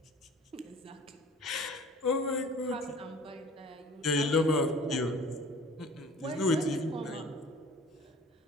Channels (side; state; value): both; normal; correlation 0.47